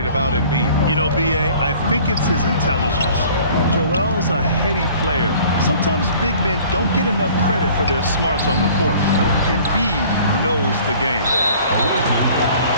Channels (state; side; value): inverted; both; correlation -0.50